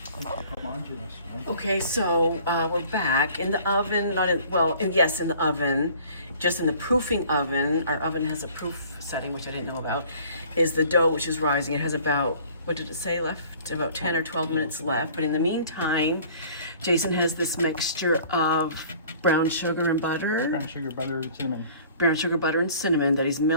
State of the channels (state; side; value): inverted; both; correlation -0.51